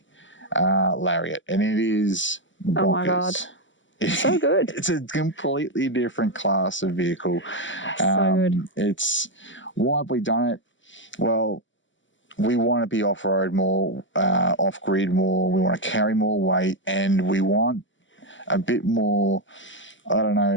Lariat, and it is bonkers. Oh my God. So good. It's a completely different class of vehicle. So good. It's, why have we done it? Well, we want to be off-road more, off-grid more, we want to carry more weight, and we want a bit more, I don't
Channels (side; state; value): right; late; 0.55 ms